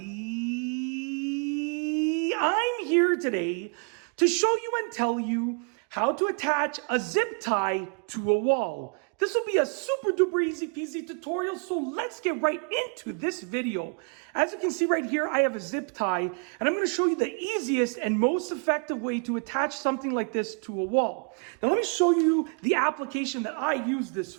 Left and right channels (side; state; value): left; quieter; 38.5 dB